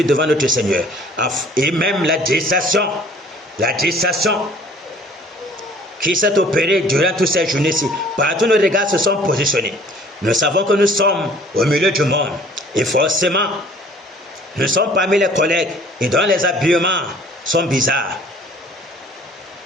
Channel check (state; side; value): normal; both; correlation 0.53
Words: devant notre Seigneur. Et même la distraction qui s'est opérée durant toutes ces journées-ci, partout nos regards se sont positionnés. Nous savons que nous sommes au milieu du monde et forcément, nous sommes parmi les collègues et dont les habillements sont bizarres.